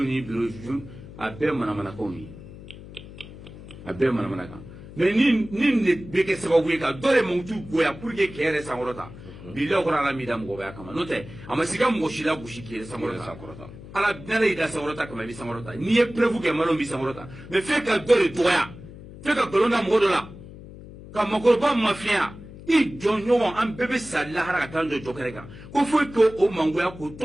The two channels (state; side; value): noise; left; hum, 16 dB below the sound